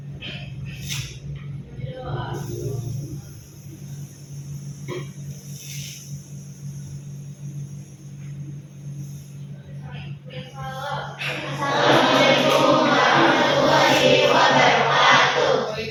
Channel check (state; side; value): identical; both; correlation 1.00